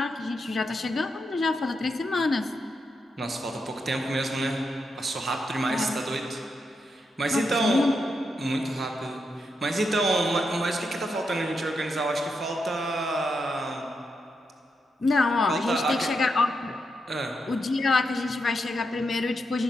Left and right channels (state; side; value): normal; both; correlation 0.84